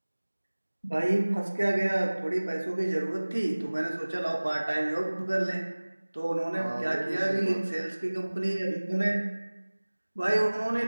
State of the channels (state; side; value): inverted; both; correlation -1.00